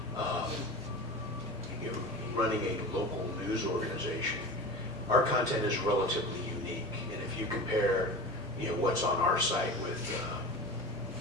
Running a local news organization, our content is relatively unique, and if you compare, what's on our site with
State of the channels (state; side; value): normal; both; correlation 0.31